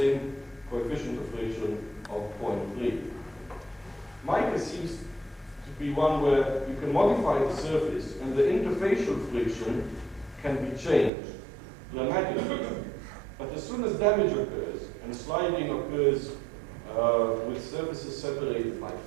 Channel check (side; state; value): left; drops out; at 11.1 s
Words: coefficient of friction of 0.3. Mica seems to be one where you can modify the surface, and the interfacial friction can be changed dramatically. But as soon as damage occurs, and sliding occurs with surfaces separated by